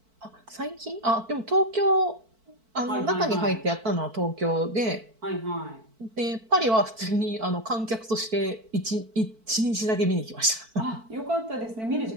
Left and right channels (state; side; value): late; left; 4.5 ms